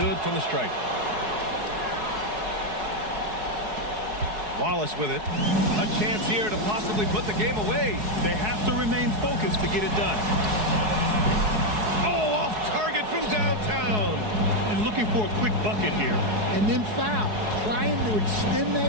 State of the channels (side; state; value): left; late; 4.7 ms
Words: from the stripe. Wallace with it. A chance here to possibly put the game away. They have to remain focused to get it done. Oh, off target from downtown. And looking for a quick bucket here. And then foul, trying to extend